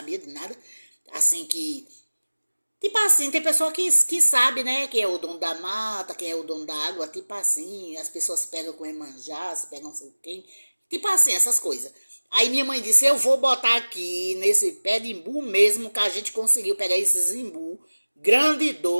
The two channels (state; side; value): inverted; both; correlation -1.00